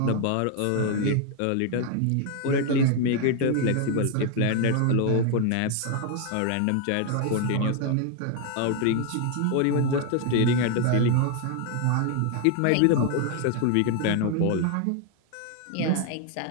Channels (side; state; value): both; different; correlation 0.01